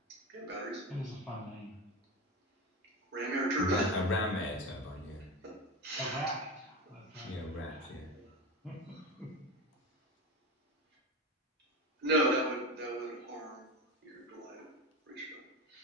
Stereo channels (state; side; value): normal; both; correlation 0.24